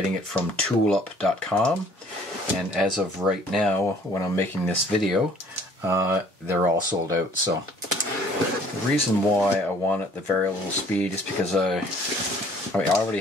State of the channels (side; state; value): both; normal; correlation 0.57